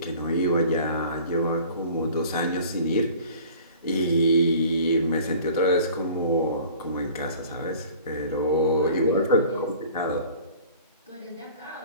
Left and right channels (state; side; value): inverted; both; correlation -0.47